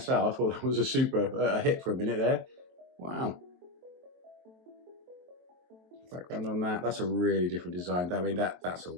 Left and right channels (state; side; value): late; left; 23 ms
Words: I thought that was a super hit for a minute there. Wow. Background on that. That's a really different design. I mean, that's a